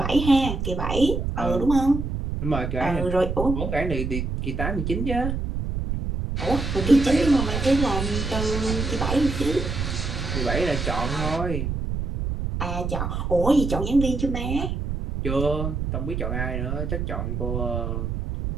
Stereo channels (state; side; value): noise; right; rumble, 3 dB below the sound